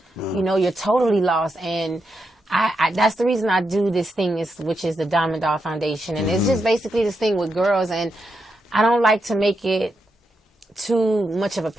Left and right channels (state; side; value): normal; both; correlation 0.84